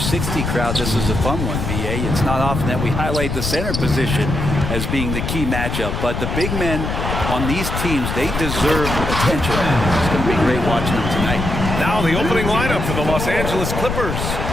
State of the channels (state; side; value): noise; left; rumble, 3 dB below the sound